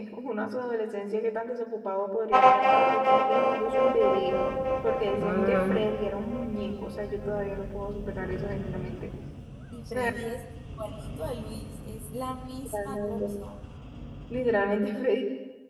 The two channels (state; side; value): identical; both; correlation 1.00